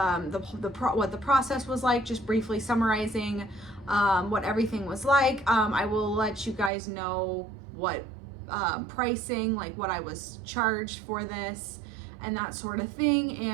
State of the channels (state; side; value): drops out; left; at 6.7 s